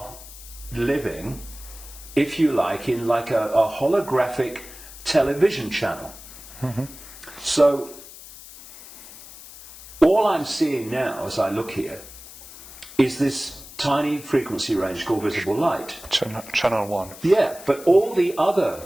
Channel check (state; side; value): noise; left; hiss, 17 dB below the sound